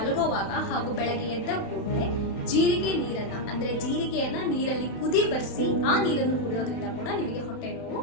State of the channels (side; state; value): right; late; 31 ms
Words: ಹಾಗೂ ಬೆಳಗ್ಗೆ ಎದ್ದ ಕೂಡಲೇ ಜೀರಿಗೆ ನೀರನ್ನ, ಅಂದ್ರೆ ಜೀರಿಗೆಯನ್ನ ನೀರಲ್ಲಿ ಕುದಿ ಬರ್ಸಿ ಆ ನೀರನ್ನು ಕುಡಿಯೋದ್ರಿಂದ ಕೂಡ ನಿಮಗೆ ಹೊಟ್ಟೆ ನೋವು